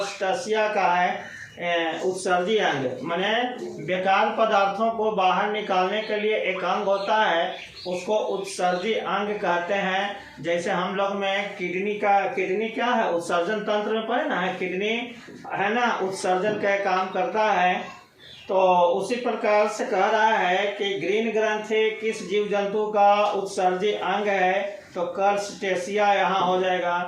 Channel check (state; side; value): identical; both; correlation 1.00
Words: का है उत्सर्जी अंग, माने बेकार पदार्थों को बाहर निकालने के लिए एक अंग होता है, उसको उत्सर्जी अंग कहते हैं। जैसे हम लोग में किडनी क्या है? उत्सर्जन तंत्र में पड़े ना है, किडनी है ना, उत्सर्जन का काम करता है। तो उसी प्रकार से कह रहा है कि ग्रीन ग्रंथि किस जीव जंतु का उत्सर्जी अंग है? तो कर्स्टेशिया यहाँ हो जाएगा।